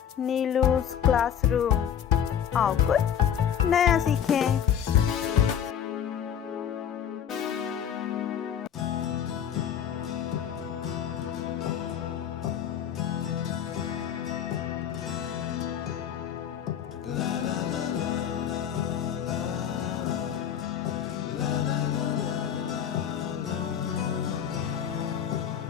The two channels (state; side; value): quieter; right; 9.0 dB